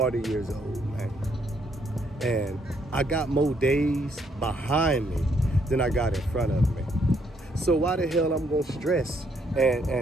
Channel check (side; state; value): both; normal; correlation 0.71